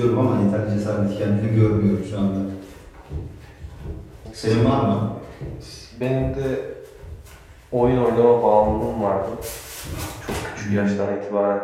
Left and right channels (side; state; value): both; identical; correlation 1.00